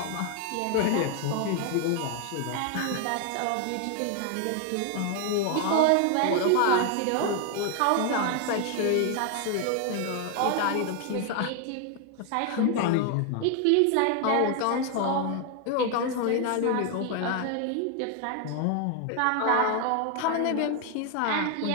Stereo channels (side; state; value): both; different; correlation 0.01